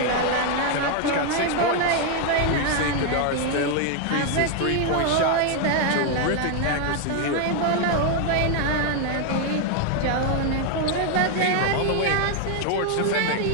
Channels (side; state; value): both; different; correlation 0.00